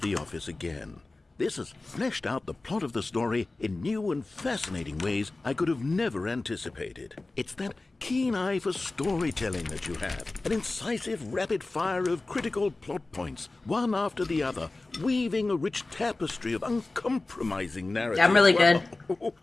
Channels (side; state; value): right; quieter; 3.2 dB